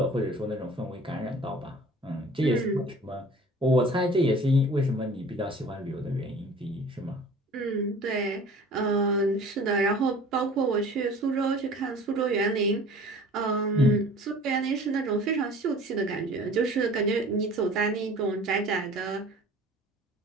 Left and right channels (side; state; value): both; normal; correlation 0.45